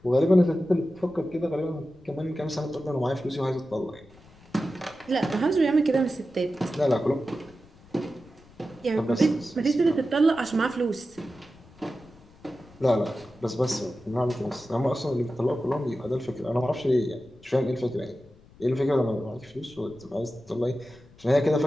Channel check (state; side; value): noise; left; rumble, 25 dB below the sound